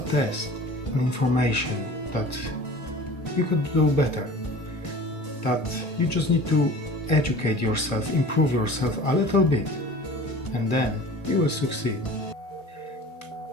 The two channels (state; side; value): late; right; 2.0 ms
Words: test, an information that you could do better, that you just need to educate yourself, improve yourself a little bit, and then you will succeed.